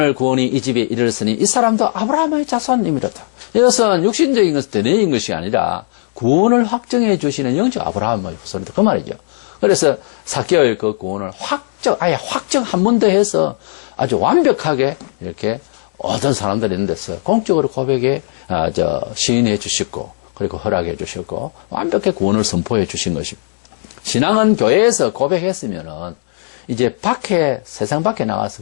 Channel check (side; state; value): right; silent; digital silence